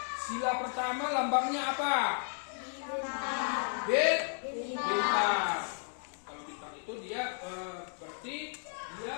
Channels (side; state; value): right; silent; 55 dB below the other